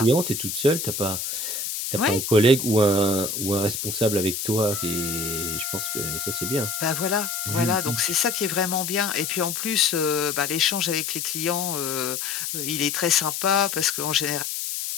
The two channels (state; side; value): noise; left; hiss, 4 dB below the sound